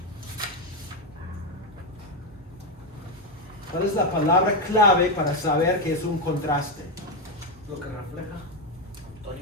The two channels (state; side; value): normal; both; correlation 0.07